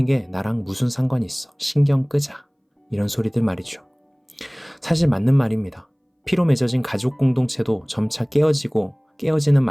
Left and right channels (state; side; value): identical; both; correlation 1.00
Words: 게 나랑 무슨 상관이 있어? 신경 끄자. 이런 소리들 말이죠. 사실 맞는 말입니다. 피로 맺어진 가족 공동체도 점차 깨어지는